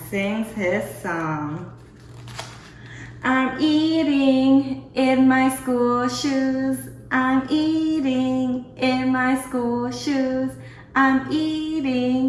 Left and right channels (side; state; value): both; identical; correlation 1.00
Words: sings his song. I'm eating in my school shoes. I'm eating in my school shoes. I'm